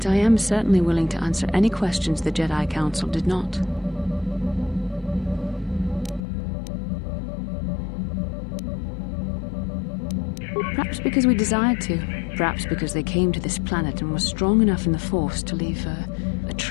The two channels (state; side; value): drops out; right; at 6.2 s